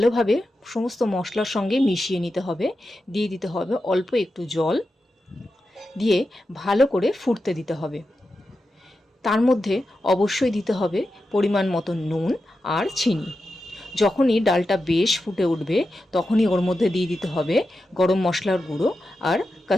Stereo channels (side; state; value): both; normal; correlation 0.90